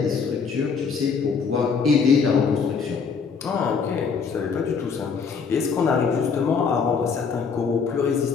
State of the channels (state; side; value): quieter; right; 5.6 dB